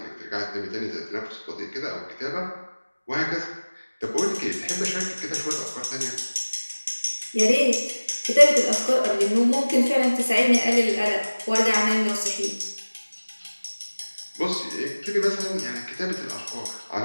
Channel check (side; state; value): both; inverted; correlation -1.00